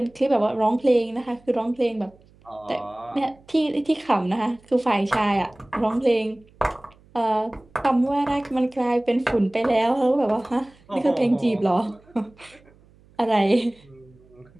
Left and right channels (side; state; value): right; noise; hum, 29 dB below the sound